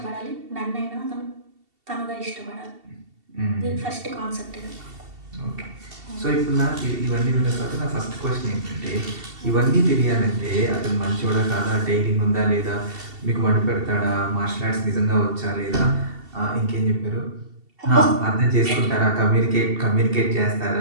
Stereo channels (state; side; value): late; left; 2.7 ms